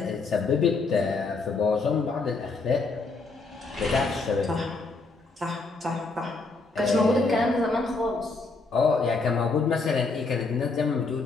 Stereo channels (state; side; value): quieter; right; 3.8 dB